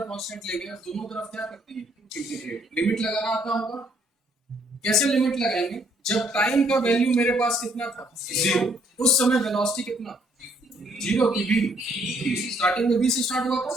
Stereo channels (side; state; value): both; normal; correlation 0.66